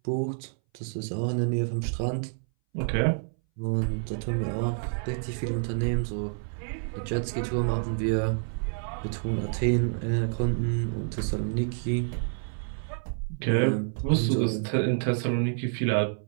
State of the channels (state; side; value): silent; left; 59 dB below the other